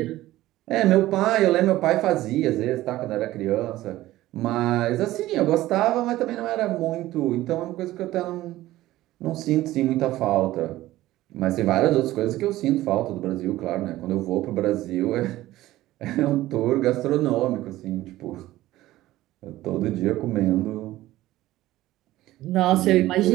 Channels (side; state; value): left; quieter; 16.0 dB